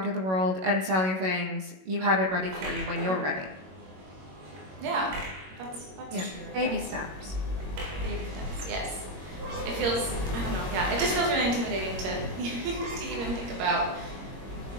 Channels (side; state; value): left; late; 21 ms